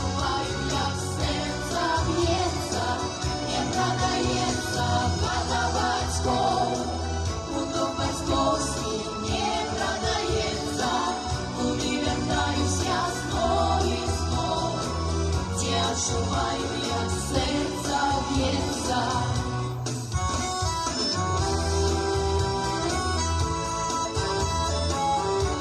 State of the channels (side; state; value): both; identical; correlation 1.00